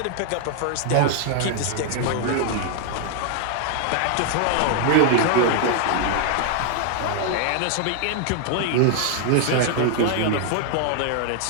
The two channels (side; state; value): both; different; correlation 0.00